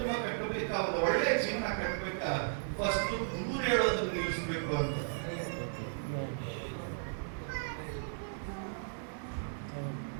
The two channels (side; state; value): left; silent; digital silence